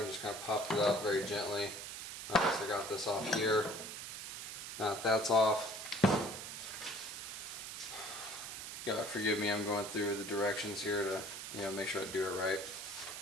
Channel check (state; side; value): noise; right; hiss, 8 dB below the sound